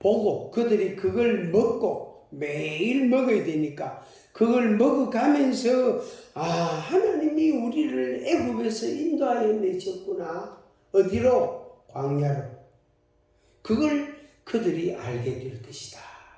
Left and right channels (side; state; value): both; identical; correlation 1.00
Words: 그들이 그걸 먹고 매일 먹어야 되니까 그걸 먹어가면서 하나님이 우리를 애굽에서 인도하여 내셨구나. 어디로? 광야로. 그걸 그들이 알게 될 것이다